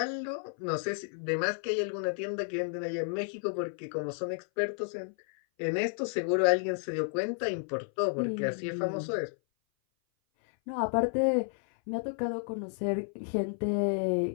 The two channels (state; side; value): silent; right; 57 dB below the other